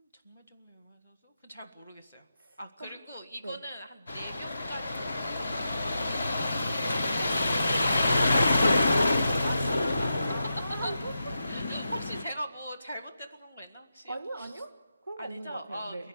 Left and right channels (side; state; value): both; inverted; correlation -0.88